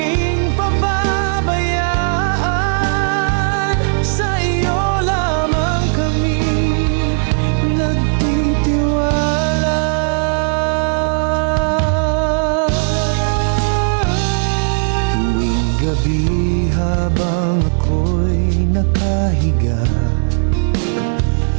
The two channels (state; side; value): silent; left; digital silence